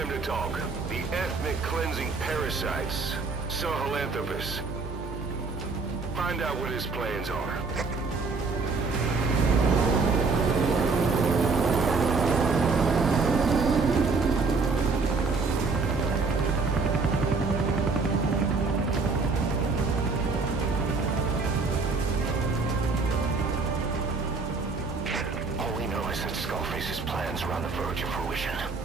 to talk. The ethnic cleansing parasites, Sahelanthropus. Find out what his plans are. on the verge of fruition.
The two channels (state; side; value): quieter; left; 4.2 dB